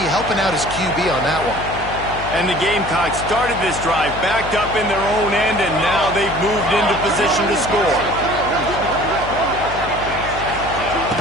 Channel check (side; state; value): left; noise; hum, 11 dB below the sound